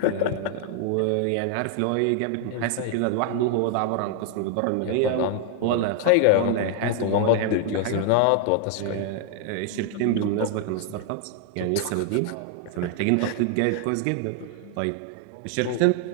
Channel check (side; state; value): both; different; correlation 0.00